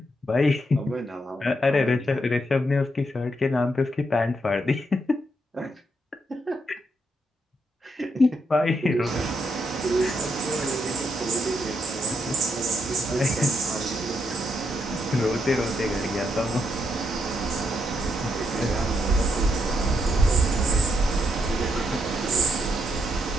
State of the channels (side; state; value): both; normal; correlation 0.78